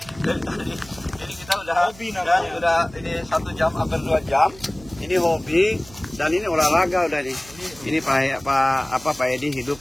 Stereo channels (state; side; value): noise; right; hum, 21 dB below the sound